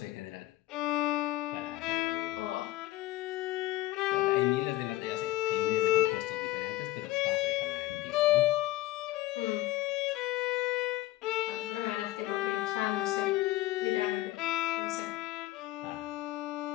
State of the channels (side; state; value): right; quieter; 16.8 dB